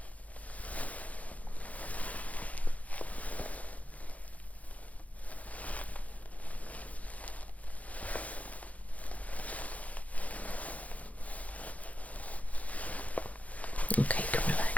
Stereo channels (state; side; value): late; right; 0.069 ms